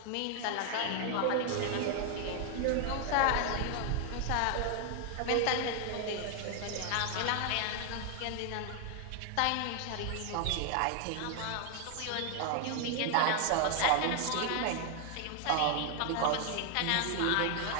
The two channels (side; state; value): both; different; correlation 0.00